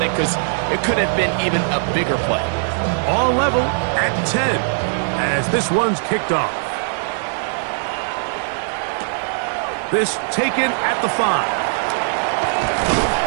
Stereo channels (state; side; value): silent; left; 66 dB below the other